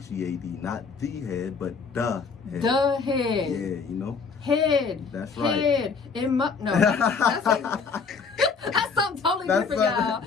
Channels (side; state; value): right; quieter; 5.2 dB